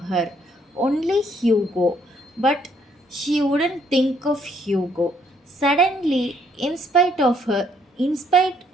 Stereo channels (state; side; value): normal; both; correlation 0.67